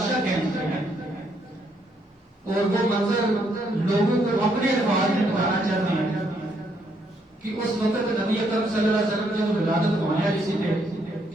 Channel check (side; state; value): both; normal; correlation 0.73